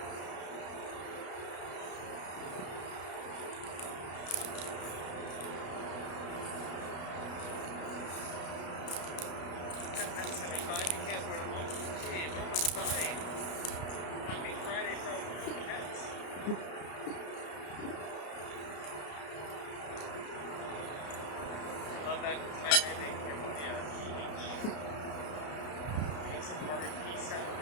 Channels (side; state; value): right; late; 33 ms